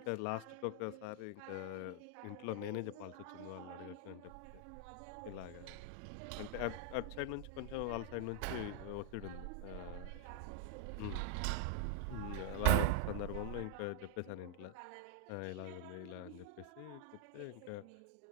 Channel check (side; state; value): both; different; correlation 0.00